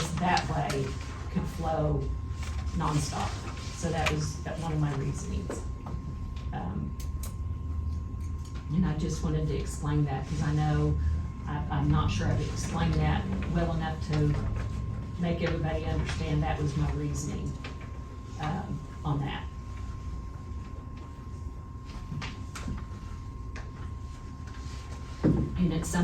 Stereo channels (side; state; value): both; identical; correlation 1.00